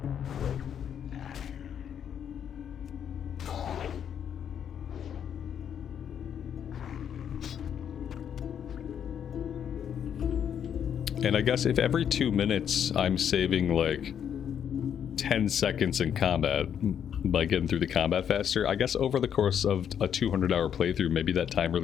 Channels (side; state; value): right; quieter; 8.7 dB